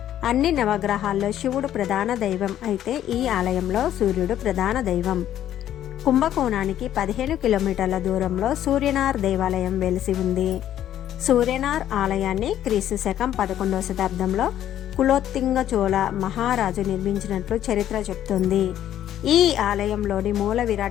అన్ని నవగ్రహాల్లో శివుడు ప్రధాన దైవం అయితే ఈ ఆలయంలో సూర్యుడు ప్రధాన దైవం. కుంభకోణానికి 15 కిలోమీటర్ల దూరంలో సూర్యనార్ దేవాలయం వెలిసి ఉంది. సూర్యనార్ ఆలయాన్ని క్రీస్తు శకం 11వ శతాబ్దంలో కులోత్తుంగ చోళ మహారాజు నిర్మించినట్లు చరిత్ర చెప్తుంది. ఈ ఆలయంలోని మూల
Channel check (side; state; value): right; quieter; 11.5 dB